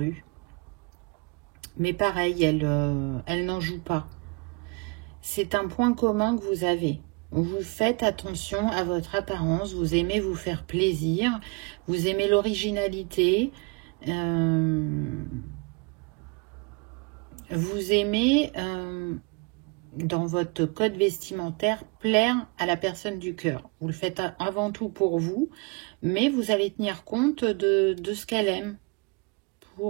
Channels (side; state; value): left; quieter; 30.0 dB